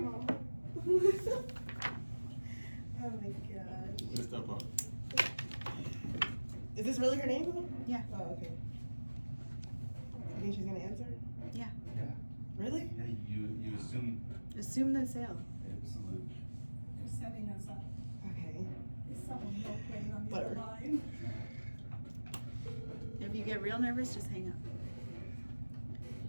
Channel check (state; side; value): inverted; both; correlation -1.00